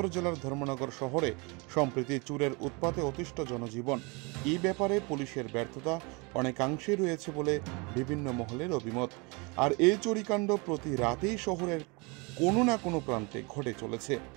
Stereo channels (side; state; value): left; quieter; 29.0 dB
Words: জেলার ধর্মনগর শহরে সম্প্রতি চোরের উৎপাতে অতিষ্ঠ জনজীবন। এই ব্যাপারে পুলিশের ব্যর্থতা অনেকাংশেই রয়েছে বলে বিভিন্ন মহলের অভিমত। আর এই চুরিকাণ্ড প্রতি রাতেই শহরের কোনো না কোনো প্রান্তে ঘটে চলেছে।